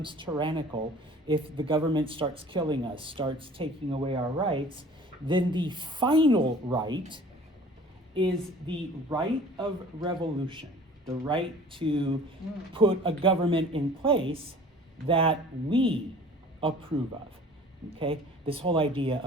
tyrannical, if the government starts killing us, starts taking away our rights, then the final right is the right of revolution, the right to put a government in place that we approve of, okay? This whole idea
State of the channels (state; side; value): normal; both; correlation 0.47